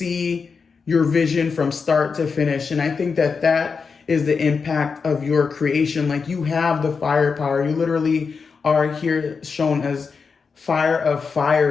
your vision from start to finish. And I think that is the impact of your creation. Like, you have the firepower. You literally are here shown as fire of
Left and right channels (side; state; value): right; quieter; 5.3 dB